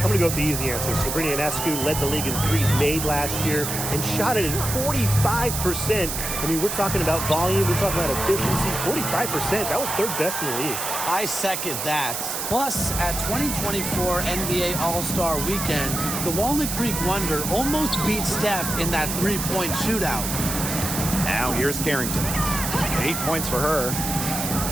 I'm going to go with the easy answer. Sabrina Ionescu led the league in threes made last year and shot it at 45%. I mean, we're talking about volume. We're talking about efficiency. 45%. That was 3rd best in the league. I second that. Plus, at 2024 NBA All-Star Weekend, the Walnut Creek Wonder almost beat Steph in that 3-point shootout. Now here's Carrington. 8 points for her.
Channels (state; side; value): noise; right; hiss, 3 dB below the sound